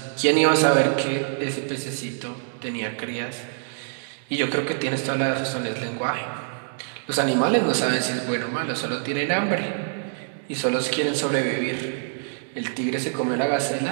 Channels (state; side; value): silent; left; digital silence